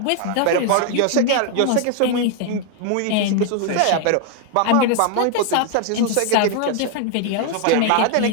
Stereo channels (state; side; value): different; both; correlation 0.00